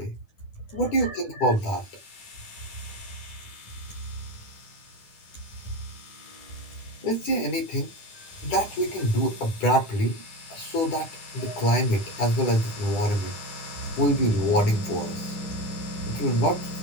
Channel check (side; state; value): right; late; 10 ms